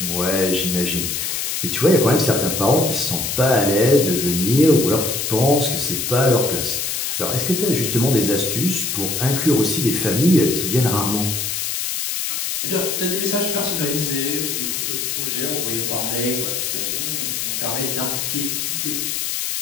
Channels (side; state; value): left; noise; hiss, 2 dB below the sound